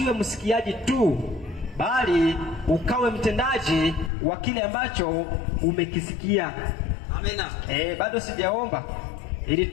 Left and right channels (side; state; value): right; drops out; at 4.1 s